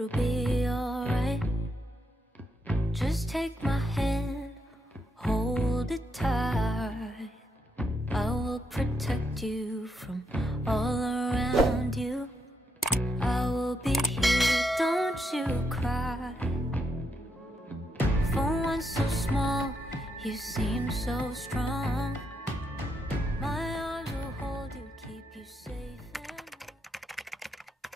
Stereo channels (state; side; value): normal; both; correlation 0.80